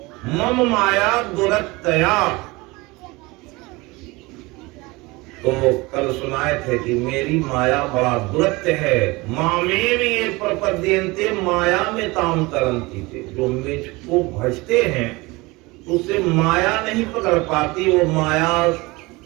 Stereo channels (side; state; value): left; quieter; 23.2 dB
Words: मम माया दुरत्तया। तो कल सुनाए थे कि मेरी माया बड़ा दुरत्य है। मामे में ये प्रपद्यन्ते माया में ताम तरंती थे। जो मुझको भजते हैं उससे माया नहीं पकड़ पाती, वो माया